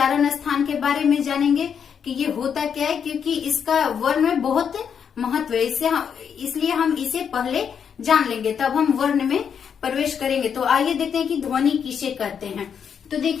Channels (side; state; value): right; quieter; 7.4 dB